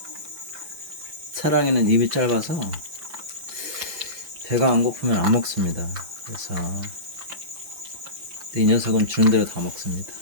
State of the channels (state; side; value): late; left; 5.8 ms